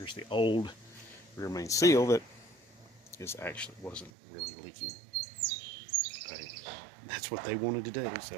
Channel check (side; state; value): left; drops out; at 4.1 s